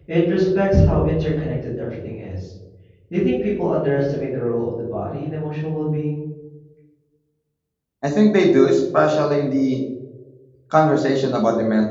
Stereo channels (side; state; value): both; identical; correlation 1.00